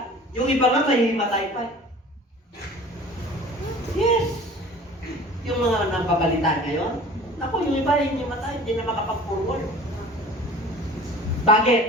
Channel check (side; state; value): both; normal; correlation 0.44